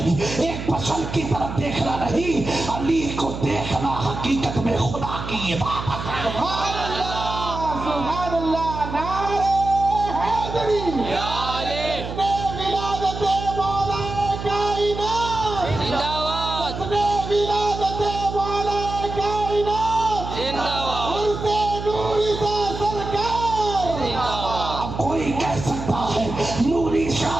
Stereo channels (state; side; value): noise; right; hum, 7 dB below the sound